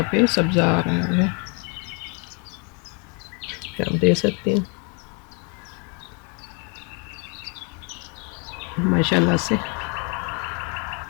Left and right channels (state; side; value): quieter; right; 35.6 dB